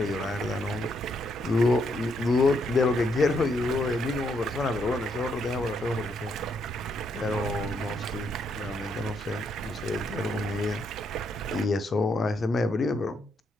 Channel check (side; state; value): both; normal; correlation 0.75